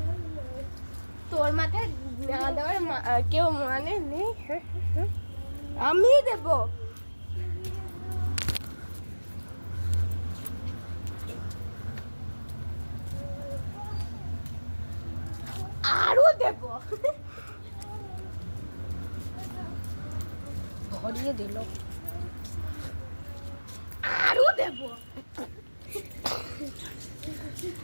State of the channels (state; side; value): inverted; both; correlation -1.00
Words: তোর মাথায় না দেওয়ার কেউ মানে নেই, আমি দেব। আরো দেব, ভরিয়ে দিল। আরো দেব।